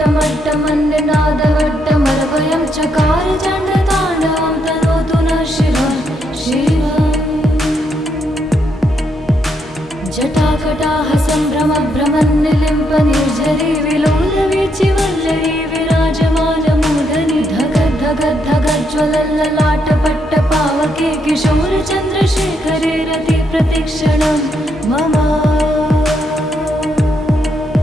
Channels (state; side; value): normal; both; correlation 0.77